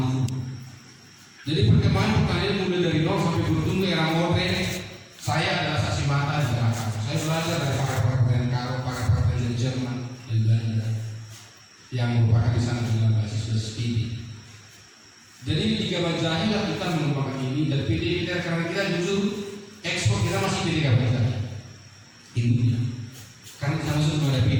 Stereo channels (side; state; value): both; identical; correlation 1.00